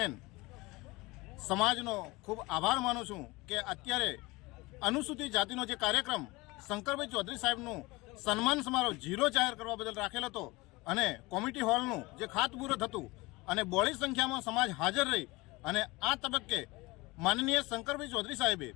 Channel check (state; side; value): quieter; right; 22.7 dB